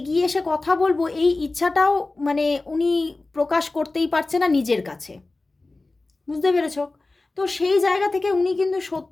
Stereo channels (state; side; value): quieter; right; 3.2 dB